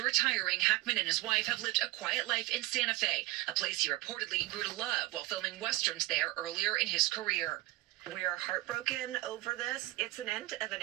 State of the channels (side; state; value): left; quieter; 18.6 dB